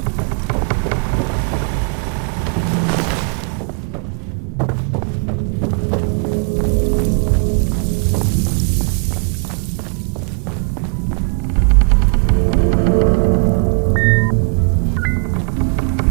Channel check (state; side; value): quieter; left; 38.8 dB